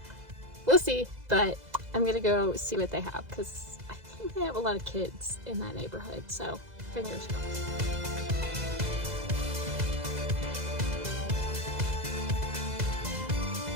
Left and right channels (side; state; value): left; late; 2.0 ms